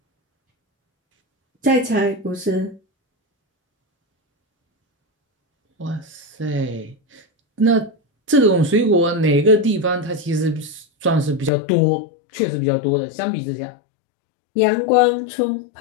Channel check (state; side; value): drops out; right; at 11.5 s